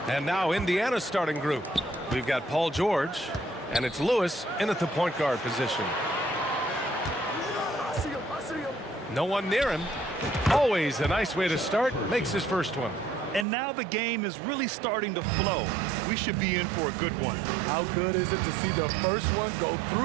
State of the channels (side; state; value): left; drops out; at 13.5 s